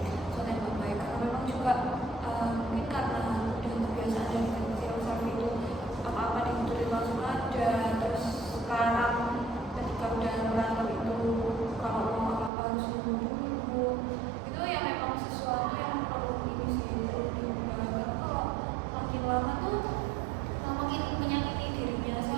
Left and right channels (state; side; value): drops out; left; at 12.5 s